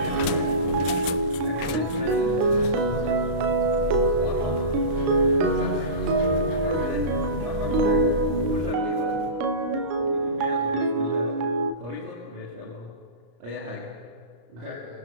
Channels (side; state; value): left; late; 34 ms